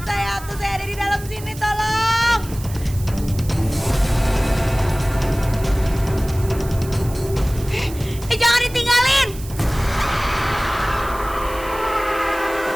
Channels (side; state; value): right; noise; hiss, 16 dB below the sound